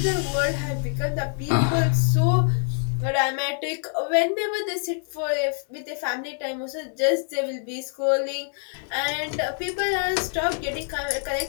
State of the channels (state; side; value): silent; right; 62 dB below the other